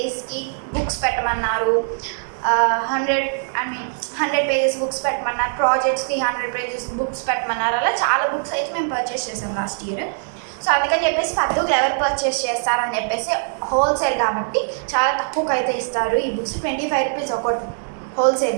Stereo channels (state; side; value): silent; left; digital silence